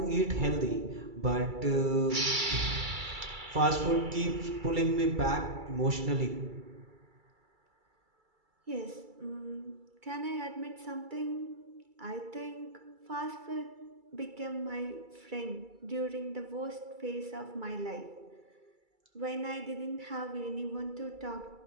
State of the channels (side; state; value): left; late; 2.3 ms